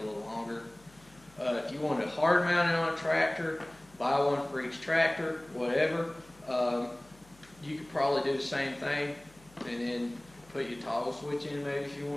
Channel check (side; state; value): left; noise; hum, 26 dB below the sound